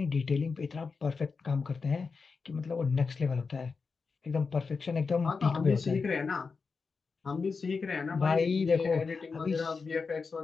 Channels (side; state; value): right; quieter; 4.8 dB